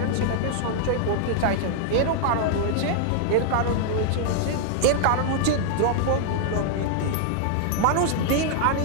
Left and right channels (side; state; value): both; different; correlation -0.01